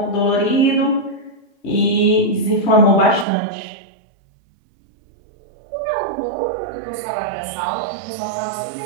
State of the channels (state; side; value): drops out; left; at 3.2 s